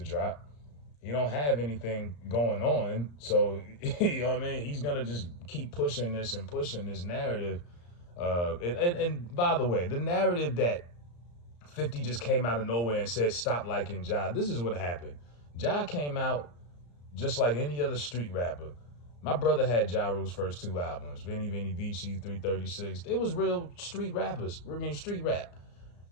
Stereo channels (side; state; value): right; late; 34 ms